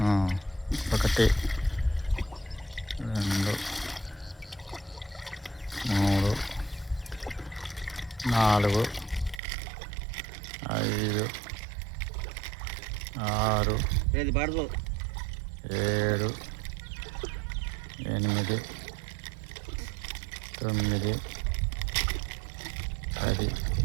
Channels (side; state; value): left; drops out; at 9.4 s